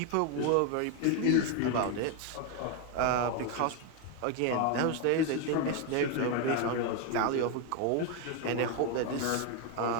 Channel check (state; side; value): different; both; correlation 0.01